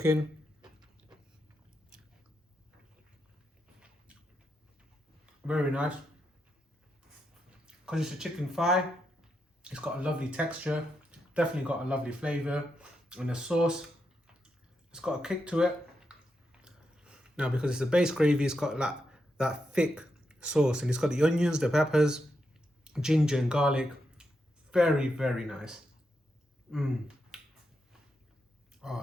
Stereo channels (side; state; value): both; normal; correlation 0.84